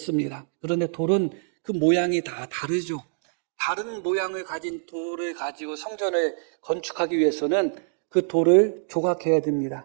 그런데 돌은 그 모양이 다 다르죠. 다른 모양을 가진 돌을 가지고 성전을 건축하기 위해서는 그 돌을 조각해야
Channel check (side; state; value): left; silent; digital silence